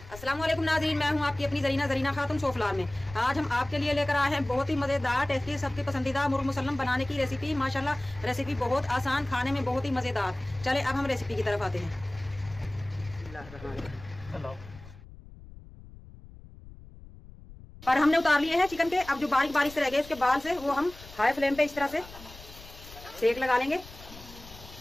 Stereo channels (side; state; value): left; noise; rumble, 18 dB below the sound